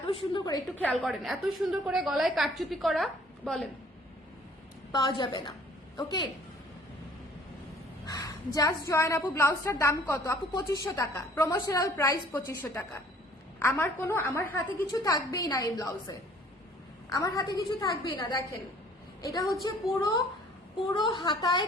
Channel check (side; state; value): both; normal; correlation 0.55